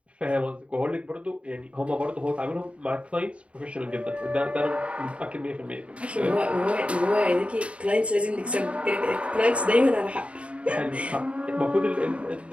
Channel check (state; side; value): late; left; 0.062 ms